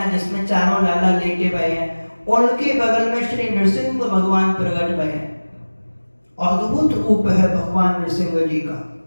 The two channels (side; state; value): both; inverted; correlation -1.00